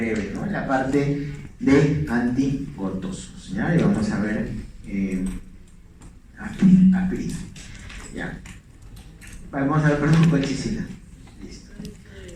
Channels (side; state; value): both; identical; correlation 1.00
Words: ¿no?, en la parte de antigotosos, ¿ya? Y vamos a ver aspirina, ¿ya? Vamos a ver, perdón, colchicina. Listo.